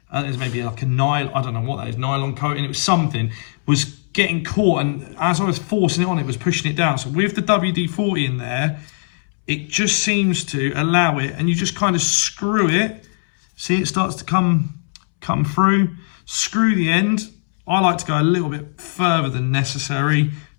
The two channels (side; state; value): right; silent; 66 dB below the other